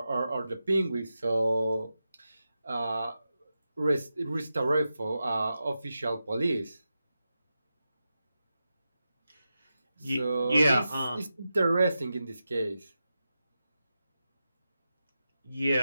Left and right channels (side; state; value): both; inverted; correlation -0.90